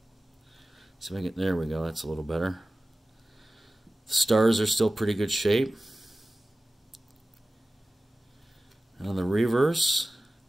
So there we go. That's a little better. The stars are still pretty good shape. And on the reverse,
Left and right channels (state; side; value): normal; both; correlation 0.96